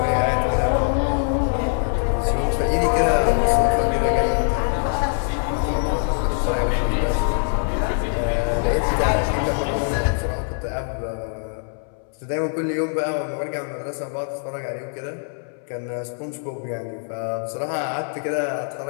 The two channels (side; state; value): right; silent; 64 dB below the other